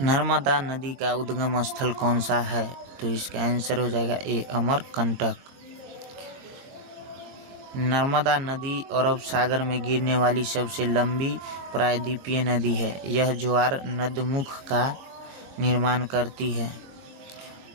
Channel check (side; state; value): left; late; 22 ms